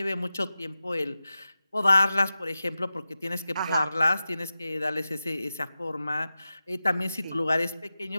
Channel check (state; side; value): inverted; both; correlation -0.93